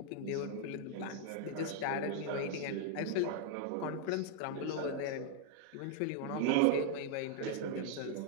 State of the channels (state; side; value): different; both; correlation 0.00